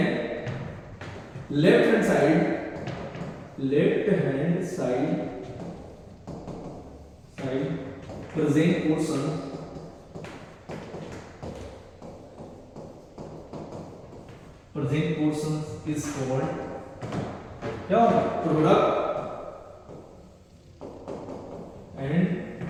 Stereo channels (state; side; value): identical; both; correlation 1.00